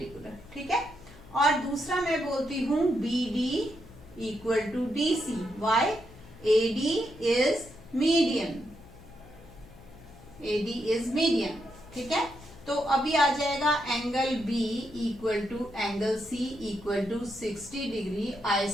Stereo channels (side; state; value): left; noise; hum, 21 dB below the sound